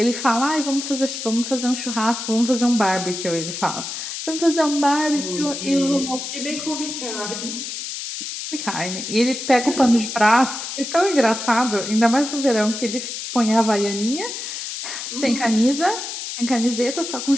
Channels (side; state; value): left; noise; hiss, 6 dB below the sound